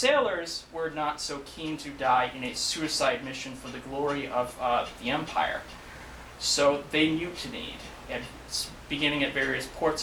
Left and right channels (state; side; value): identical; both; correlation 1.00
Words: were not so keen to die in a suicide mission for the glory of the empire. So they mutinied, beginning at various ports